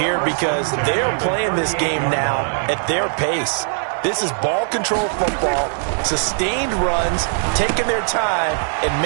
because they're playing this game now at their pace. This is ball control football, sustained runs, taking their time, and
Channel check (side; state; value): left; silent; digital silence